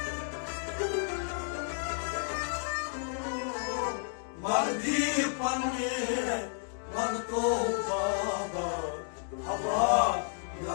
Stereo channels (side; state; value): right; silent; digital silence